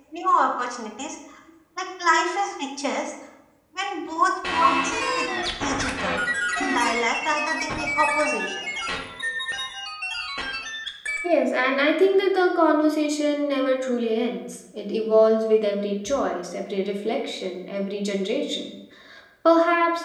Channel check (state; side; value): identical; both; correlation 1.00